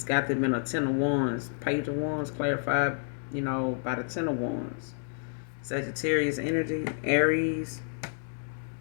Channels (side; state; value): right; silent; digital silence